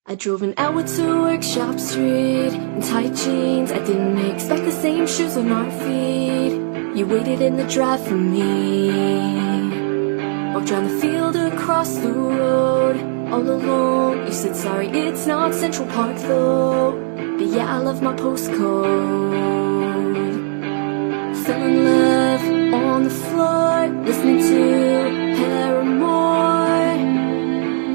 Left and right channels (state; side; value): silent; left; digital silence